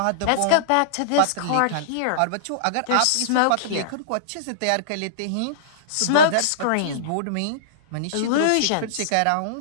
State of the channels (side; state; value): both; different; correlation -0.02